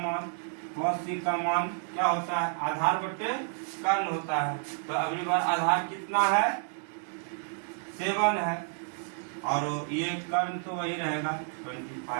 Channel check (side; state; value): left; silent; 58 dB below the other